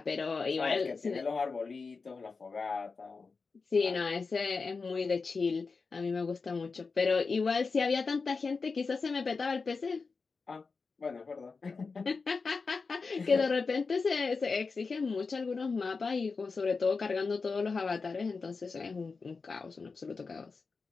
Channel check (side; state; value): right; quieter; 4.5 dB